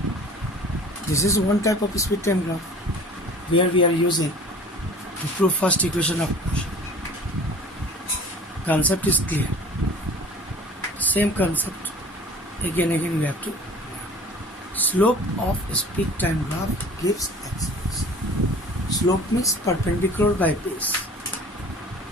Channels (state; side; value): normal; both; correlation 0.45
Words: This is one type of speed time graph where we are using to prove first equation of motion. Concept is clear. Same concept again we have to learn. Slope of speed time graph gives acceleration. Slope means perpendicular by base